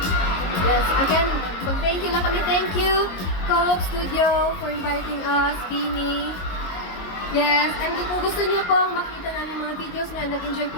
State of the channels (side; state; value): right; late; 22 ms